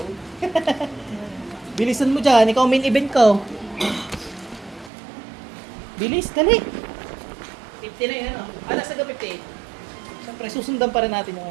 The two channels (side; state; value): left; drops out; at 4.9 s